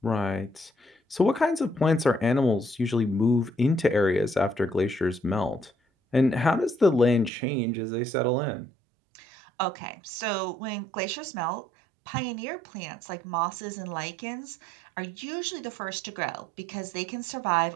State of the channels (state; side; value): drops out; left; at 7.3 s